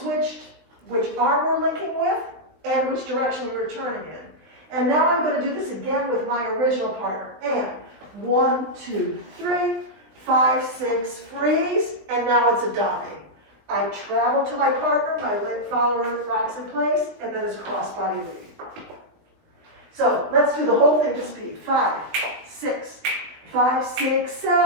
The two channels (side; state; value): left; late; 20 ms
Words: which arm we're linking with and which direction we were turning in. And now I'm going to do this again with my original partner. And 1, 2, 3, 5, 6, freeze, and now it's a dame. I travel to my partner, my leg follower rocks in place, and then it's cross-body lead. So let's do the whole thing to speed. 5, 6, 5, 6,